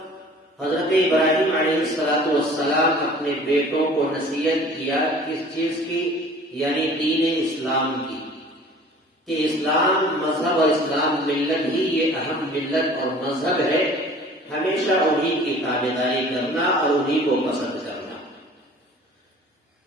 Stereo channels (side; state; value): both; normal; correlation 0.47